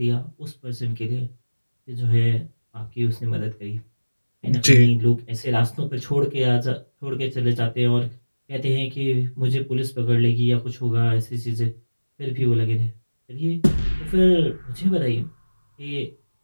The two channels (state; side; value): inverted; both; correlation -1.00